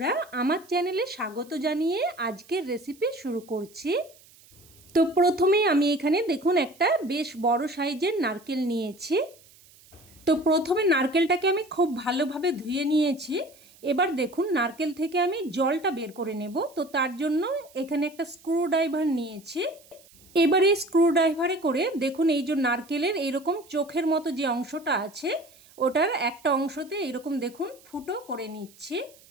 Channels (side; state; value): right; noise; hiss, 26 dB below the sound